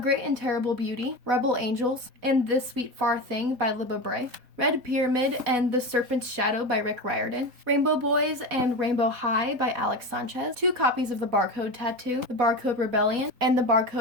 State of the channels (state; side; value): late; left; 4.1 ms